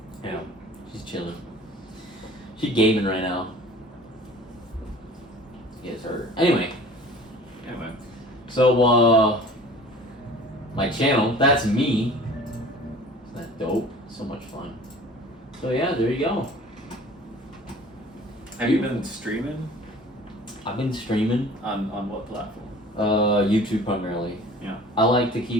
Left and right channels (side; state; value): both; normal; correlation 0.46